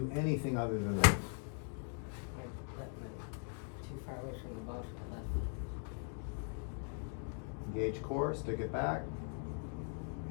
anything other than that. Too far away from the ball for the left. Engage core, stick it back,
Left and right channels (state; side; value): silent; right; 51 dB below the other